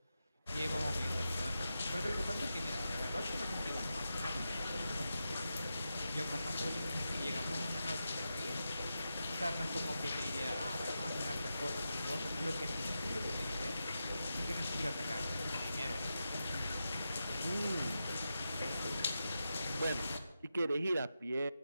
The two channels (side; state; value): both; inverted; correlation -0.89